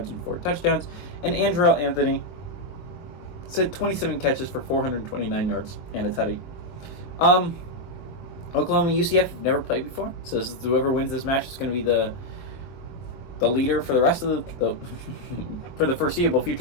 and 4 touchdowns. And Andrell Anthony has had 27 catches for 429 yards and a tutty. Oklahoma and UCF have never played before, so this is, whoever wins this match is going to be the leader for the rest of the for the foreseeable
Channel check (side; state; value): right; late; 22 ms